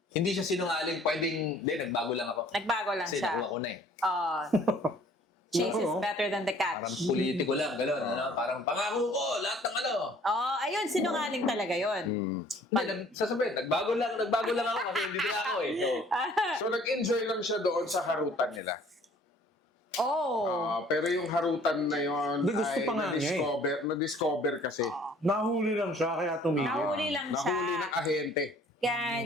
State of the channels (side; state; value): both; normal; correlation 0.55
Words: Hindi siya sinungaling. Pwedeng... Hindi, nagbago lang ako. Nagbago lang Kasi siya. nakuha ko na eh. Chase is Oo. better than the catch. Parang politiko lang. Gano'n. Parang pangako ko. Lahat ng ano. Ayun, sinungaling talaga yun. Hindi, sasabihin, nagbago lang ako kasi hindi na ako eh. So, So nag-enjoy lang siya doon sa harutan nila. Oh. Pero yung harutan na yon Hindi, gusto ay pa nga niya na-discover kasi. Nahuli lang siya, kaya tumigil. Nahuli lang siya. Nahuli ng ahente. Kaya